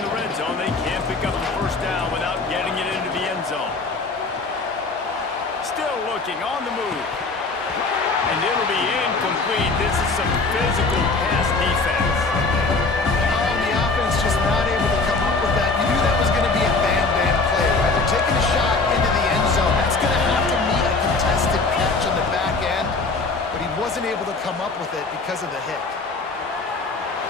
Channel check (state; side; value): quieter; right; 3.8 dB